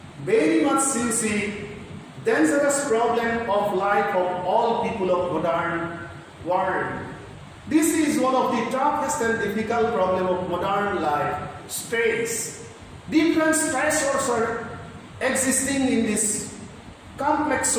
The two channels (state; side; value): identical; both; correlation 1.00